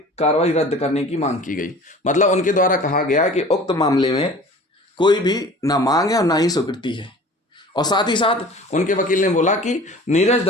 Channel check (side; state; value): both; normal; correlation 0.43